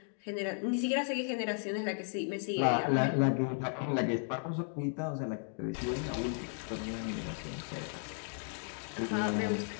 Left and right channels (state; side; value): silent; right; 55 dB below the other